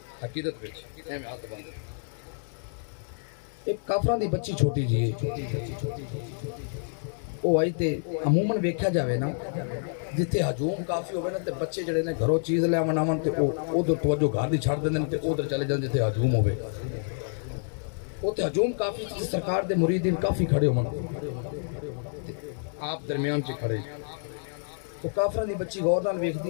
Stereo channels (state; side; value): silent; right; 59 dB below the other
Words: عقیدت وچ ایویں ہاتھ بند ایک کافراں دی بچی چھوٹی جی وہ آئی تے عموماً ویکھیا جاوے نا جتھے ہجوم کافی ہوئے نا تے بچے جڑے نے گھروں چیز لے آون آون تے ادھر توجہ گھر دی چھڑ دیندے تے ادھر چلے جان جتھے ہجوم ہوئے تے ہجوم کافی تے سرکار دے مریدین کافی کھڑے ہون آپ درمیان چ کھڑے تو کافراں دی بچی غور نال